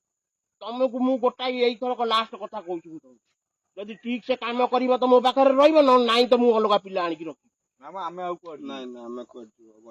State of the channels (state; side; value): identical; both; correlation 1.00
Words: ତମକୁ ମୁଁ ଗୋଟାଏ ଏଇଥରକ ଲାଷ୍ଟ କଥା କହୁଛି, ଯଦି ଠିକ ସେ କାମ କରିବ ତ ମୋ ପାଖରେ ରହିବ, ନହେଲେ ନାଇଁ ତ ମୁଁ ଅଲଗା ପିଲା ଆଣିକି ରଖିବି। ଆମେ ଆଉ କୁଆଡେ ନାଇଁ ନାଇଁ ଆମେ କୁଆଡେ ଯିବ,